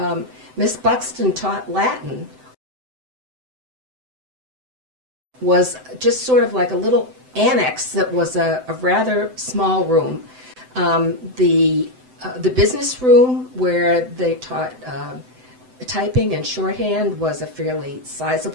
Miss Buxton taught Latin was just sort of like a little annex that was a rather small room. The business room where they taught typing and shorthand was a fairly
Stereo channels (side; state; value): left; late; 7.9 ms